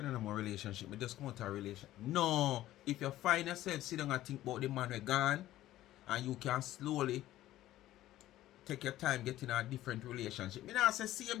on a more relationship. Me just come out of a relationship. No. If you find yourself sit down and think about the man who gone, and you can slowly take your time getting a different relationship. Me not say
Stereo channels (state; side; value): quieter; right; 14.5 dB